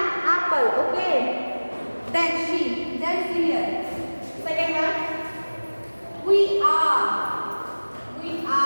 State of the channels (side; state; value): both; inverted; correlation -1.00